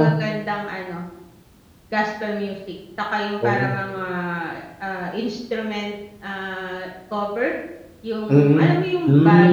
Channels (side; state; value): both; identical; correlation 1.00